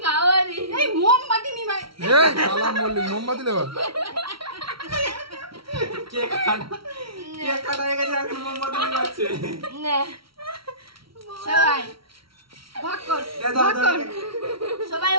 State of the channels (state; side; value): late; left; 0.75 ms